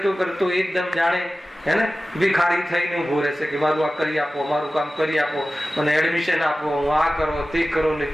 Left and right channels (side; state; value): both; normal; correlation 0.95